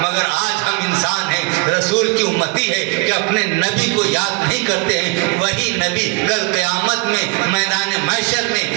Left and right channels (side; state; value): left; quieter; 27.5 dB